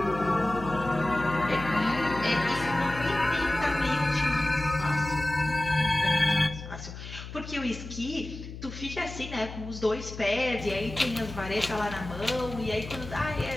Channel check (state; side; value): noise; left; hum, 11 dB below the sound